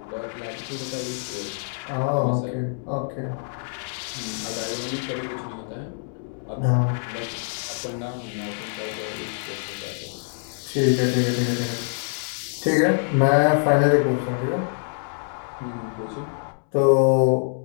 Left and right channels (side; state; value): right; silent; digital silence